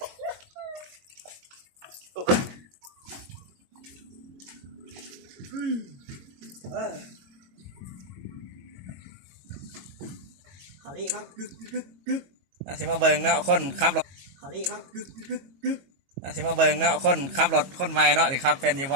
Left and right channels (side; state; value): left; late; 22 ms